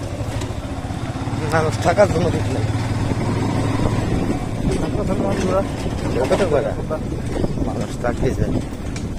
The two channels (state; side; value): identical; both; correlation 1.00